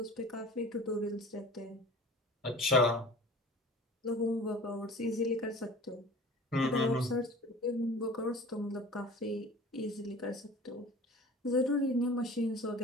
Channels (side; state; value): both; normal; correlation 0.42